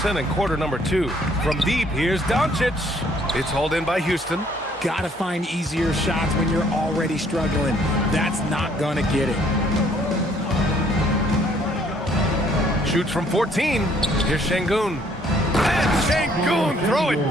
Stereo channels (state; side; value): normal; both; correlation 0.63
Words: in quarter number 2. From deep, here's Doncic. It's hauled in by Houston. Gotta find easier shots when you're already struggling. That's not gonna get it. Shoots from 14. Here's Şengün. And Şengün throw it